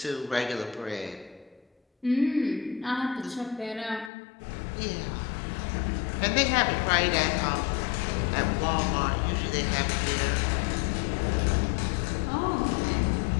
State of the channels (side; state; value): right; drops out; at 4.1 s